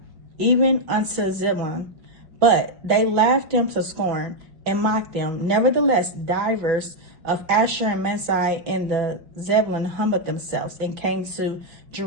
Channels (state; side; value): late; left; 6.0 ms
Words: even unto Zebulun. But they laughed them to scorn, and mocked them. Nevertheless, divers of Asher and Manasseh and the Zebulun humbled themselves and came to